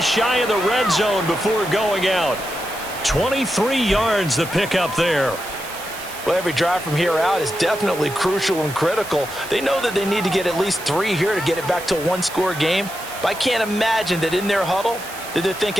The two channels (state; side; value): noise; right; hiss, 14 dB below the sound